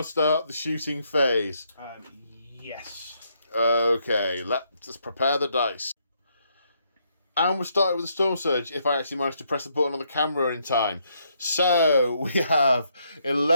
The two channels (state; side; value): inverted; both; correlation -0.74